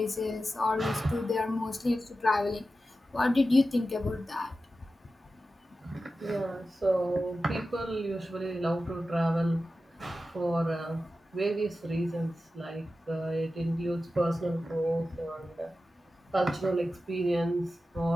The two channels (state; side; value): normal; both; correlation 0.93